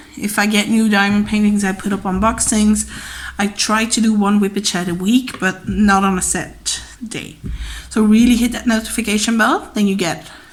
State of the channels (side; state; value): both; identical; correlation 1.00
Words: If I get new diamond paintings, I put up unboxings. I try to do one whippet chat a week, but not on a set day. So really hit that notification bell, then you get